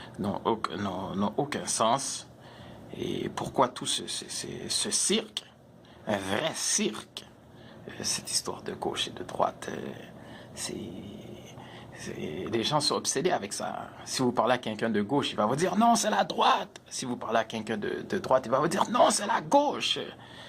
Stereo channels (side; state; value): both; identical; correlation 1.00